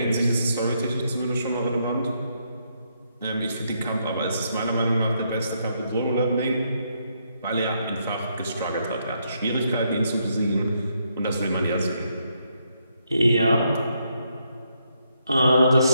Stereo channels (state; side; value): inverted; both; correlation -0.77